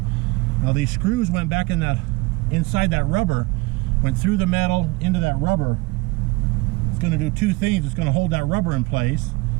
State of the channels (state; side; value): quieter; left; 23.4 dB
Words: these screws went back in that, inside that rubber, went through the metal into that rubber. It's going to do two things. It's going to hold that rubber in place,